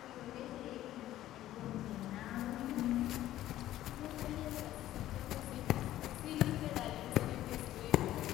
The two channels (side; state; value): right; quieter; 13.8 dB